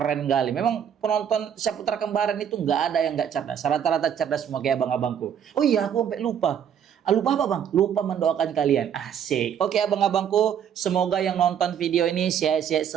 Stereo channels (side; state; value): left; quieter; 8.7 dB